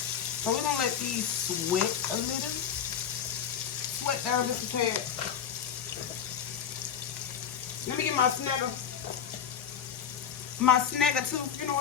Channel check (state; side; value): quieter; right; 8.2 dB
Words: we're going to let these sweat a little. Sweat down just a tad. Let me get my snagger. My snagger tooth, you know